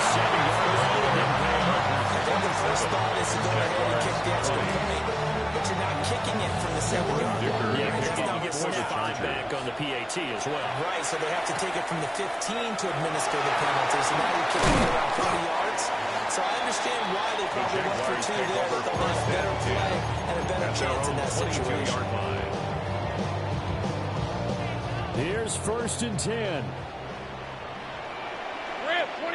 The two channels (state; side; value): identical; both; correlation 1.00